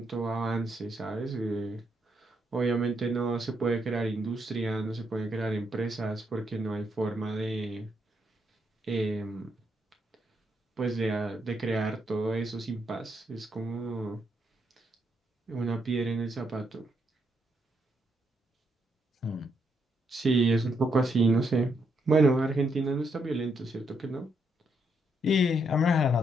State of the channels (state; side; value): normal; both; correlation 0.77